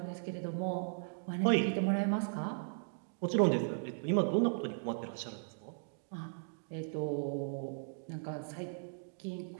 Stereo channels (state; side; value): silent; left; digital silence